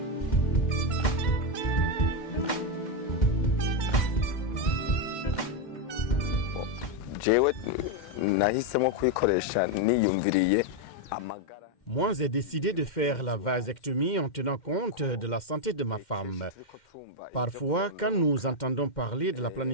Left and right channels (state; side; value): late; right; 2.1 ms